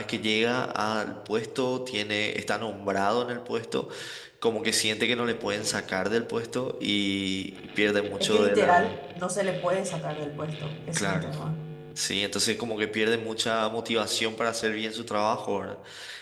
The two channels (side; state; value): both; identical; correlation 1.00